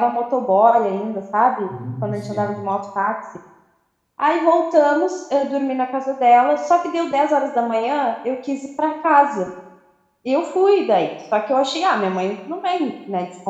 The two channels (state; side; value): identical; both; correlation 1.00